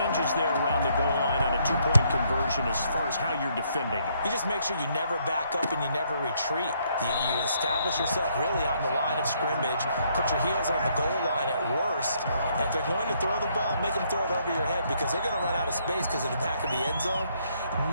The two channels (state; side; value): inverted; both; correlation -0.70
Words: there around the goal line on a 2-point conversion as far as how you're defending it? You just make sure you never back up and you never retreat. You establish yourself really on the line of scrimmage, put your heels on the goal line at worst, and if they're going to throw the ball, make them throw it over your head because they're going to run out of space because of the back of the end zone.